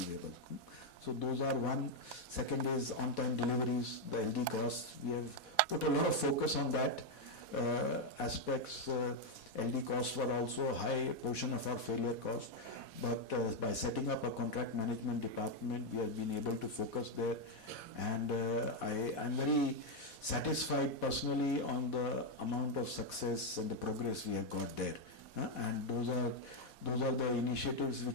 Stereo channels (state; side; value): late; right; 4.1 ms